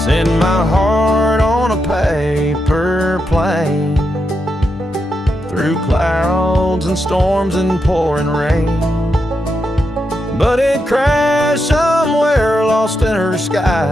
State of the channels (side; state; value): both; normal; correlation 0.84